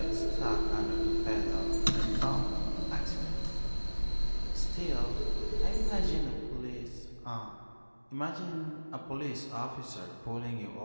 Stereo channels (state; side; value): inverted; both; correlation -1.00